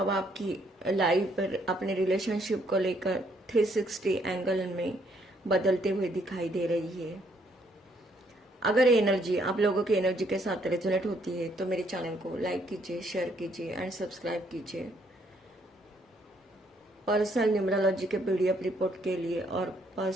आपकी लाइफ पर अपने रिलेशनशिप को लेकर 360 एंगल में बदलते हुए दिखाई दे रही है। अगर ये एनर्जी आप लोगों की एनर्जी के साथ रेजोनेट होती है तो मेरे चैनल को लाइक कीजिए, शेयर कीजिए एंड सब्सक्राइब कीजिए। पर्सनल न्यूमरोलॉजी के पीडीएफ रिपोर्ट के लिए और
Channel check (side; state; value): both; normal; correlation 0.69